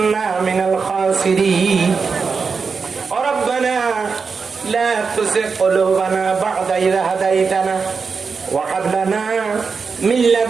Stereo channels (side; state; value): left; quieter; 5.2 dB